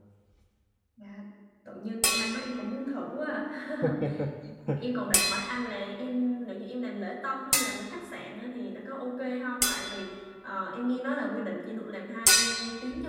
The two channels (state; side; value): identical; both; correlation 1.00